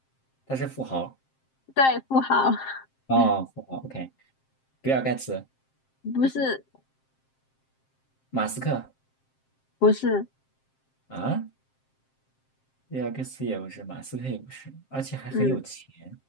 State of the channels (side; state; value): right; late; 7.6 ms